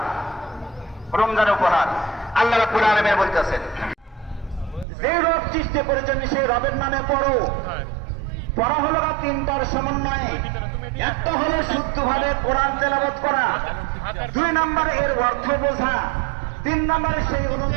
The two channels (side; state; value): left; drops out; at 4.9 s